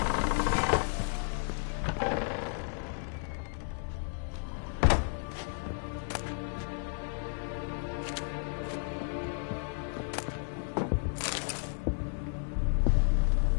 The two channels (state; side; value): silent; right; 56 dB below the other